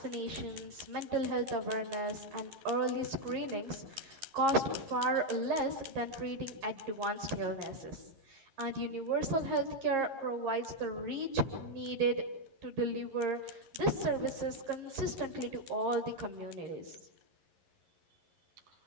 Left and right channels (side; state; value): left; late; 11 ms